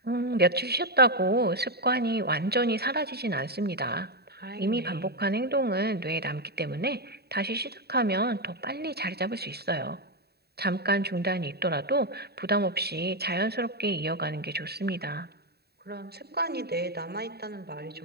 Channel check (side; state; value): left; late; 0.47 ms